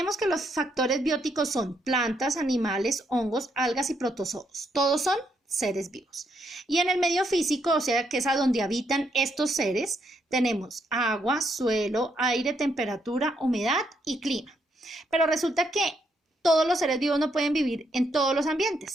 que los factores bióticos son plantas, animales, hongos, algas y protozoos. Todos son seres vivos. Y en el medio físico, o sea, que es a donde habitan estos seres, tenemos agua, suelo, aire, temperatura, humedad y clima. Pero resulta que todos los seres vivos no pueden vivir en todos los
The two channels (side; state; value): both; normal; correlation 0.76